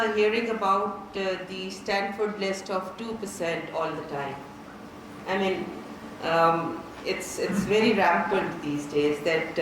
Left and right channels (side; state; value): both; identical; correlation 1.00